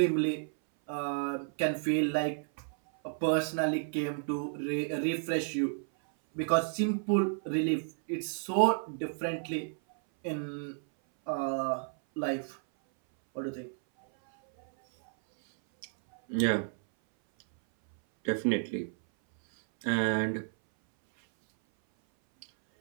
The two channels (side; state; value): left; silent; 57 dB below the other